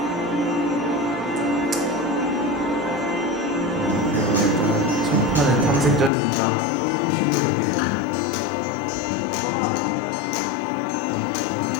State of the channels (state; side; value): drops out; right; at 6.1 s